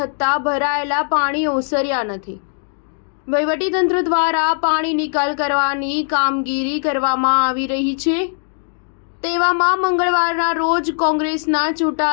ભરાયેલા પાણી ઓસર્યા નથી। વહીવટીતંત્ર દ્વારા પાણી નિકાલ કરવાની કામગીરી કરવામાં આવી રહી છે। તેવામાં મંગળવારના રોજ કોંગ્રેસના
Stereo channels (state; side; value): silent; right; digital silence